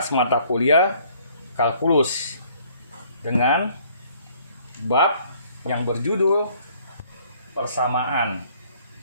mata kuliah kalkulus dengan bab yang berjudul persamaan.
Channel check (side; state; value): both; inverted; correlation -0.60